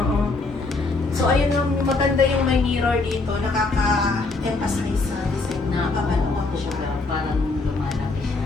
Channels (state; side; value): quieter; right; 3.6 dB